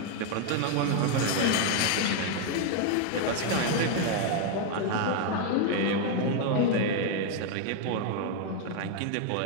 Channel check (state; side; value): different; both; correlation 0.01